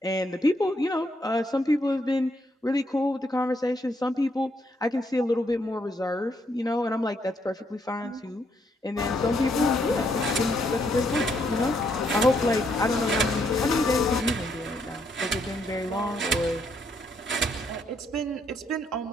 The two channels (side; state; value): both; normal; correlation 0.74